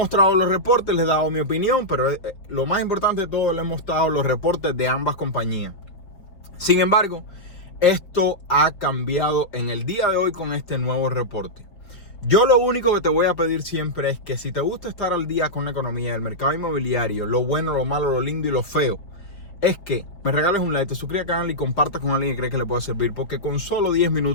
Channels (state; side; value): late; right; 5.2 ms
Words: los reportes, les he dado mi opinión, pero lo más importante de todo, le he mostrado los reportes de ambas compañías. Sin embargo, esto ha cambiado en el día de hoy con este nuevo reporte. Yo lo único que te voy a pedir siempre es que si te gusta estar al día con la economía, el mercado inmobiliario, lo bueno, lo malo, lo lindo y lo feo, es que me regales un like, te suscribas al canal y compartas con alguien que cree que le puede servir, porque con solo 10